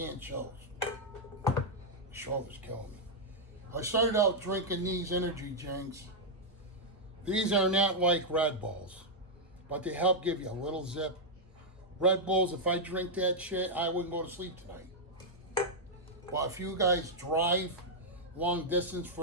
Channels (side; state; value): both; normal; correlation -0.05